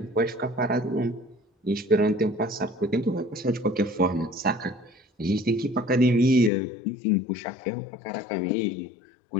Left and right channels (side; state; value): right; drops out; at 6.5 s